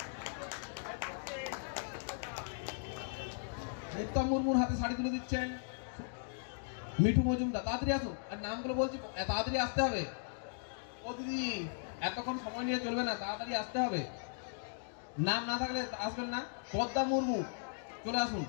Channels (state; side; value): silent; right; digital silence